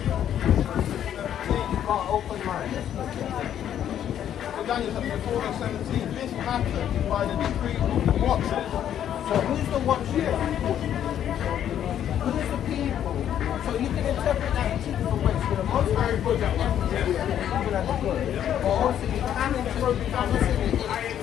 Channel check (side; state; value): right; quieter; 10.2 dB